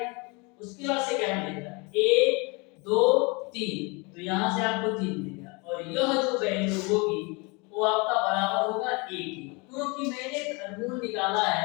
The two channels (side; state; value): right; quieter; 28.7 dB